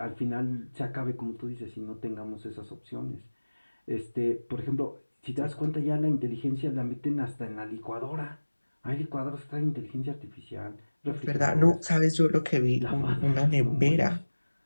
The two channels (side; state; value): both; inverted; correlation -1.00